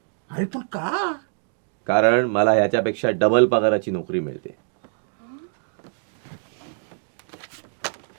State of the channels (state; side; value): silent; left; digital silence